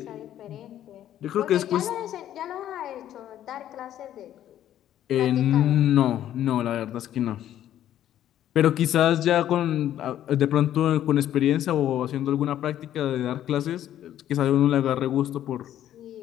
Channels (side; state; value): right; quieter; 11.6 dB